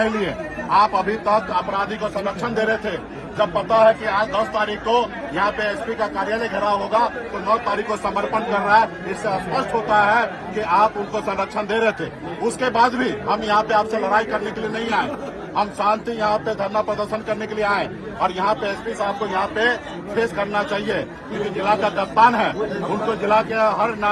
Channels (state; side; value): identical; both; correlation 1.00